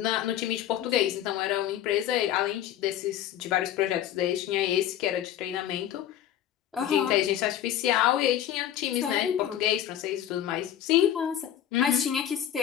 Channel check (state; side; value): quieter; right; 11.1 dB